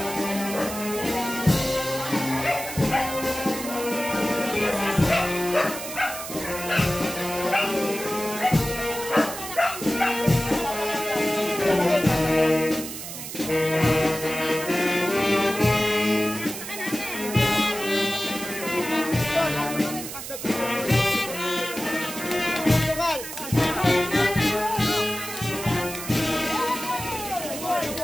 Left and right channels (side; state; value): right; noise; hiss, 9 dB below the sound